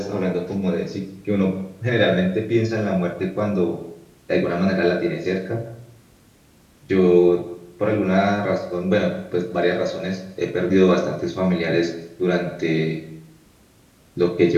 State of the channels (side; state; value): both; identical; correlation 1.00